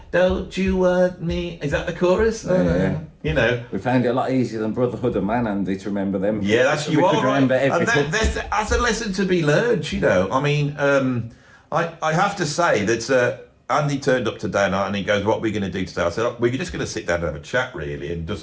Don't you want me? Is that the chorus? Yeah. You know. We found it a lot easier than Brotherhood of Man, Andy, to remember them. Yeah, that's we you could are right. remember every And hook. that's a lesson to be learned. You know. I mean, I have to say that. Andy turned up today and he goes, what are we going to do today? I said, oh, we're just going to sit down and have a chat, really, and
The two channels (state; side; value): identical; both; correlation 1.00